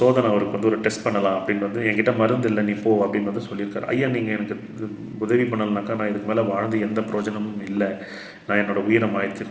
அவருக்கு வந்து ஒரு டெஸ்ட் பண்ணலாம் அப்படின்னு வந்து என்கிட்ட மருந்து இல்லை நீ போ அப்படின்னு வந்து சொல்லியிருக்காரு. ஐயா நீங்கள் எனக்கு உதவி பண்ணலனாக்கா நான் இதுக்கு மேலே வாழ்ந்து எந்த பிரயோஜனமும் இல்லை, நான் என்னோடய உயிரை மாய்த்து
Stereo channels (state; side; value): identical; both; correlation 1.00